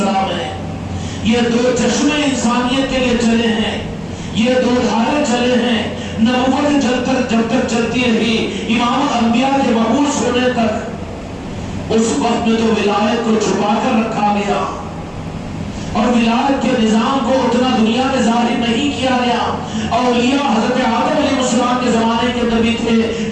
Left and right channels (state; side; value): identical; both; correlation 1.00